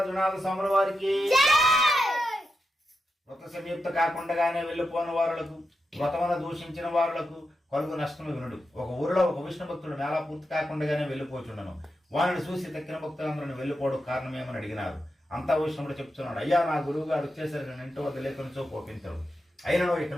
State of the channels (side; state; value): both; normal; correlation 0.88